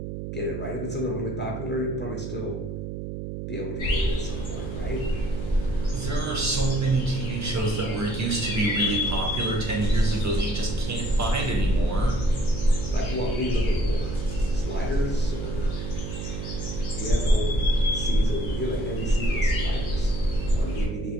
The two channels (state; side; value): noise; right; hum, 6 dB below the sound